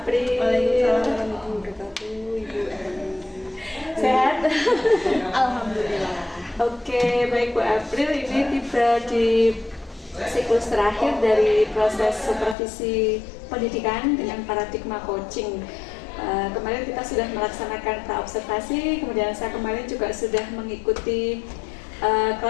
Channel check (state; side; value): drops out; right; at 12.6 s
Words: Waalaikumsalam warahmatullahi wabarakatuh, Ibu Eli. Sehat? Alhamdulillah. Oke, baik Bu April, ini tiba di siklus terakhir dari proses supervisi pendidikan dengan paradigma coaching. Kemarin kita sudah melaksanakan pra-observasi, kemudian saya kemarin juga sudah mengikuti